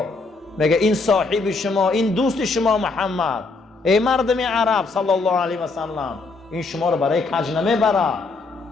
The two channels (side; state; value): right; quieter; 3.9 dB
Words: میگه این صاحب شما، این دوست شما محمد، ای مردم عرب صلی الله علیه و سلم، این شما رو برای کج نمیبره.